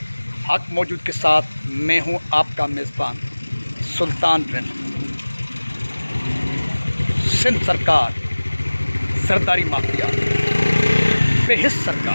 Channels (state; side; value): inverted; both; correlation -1.00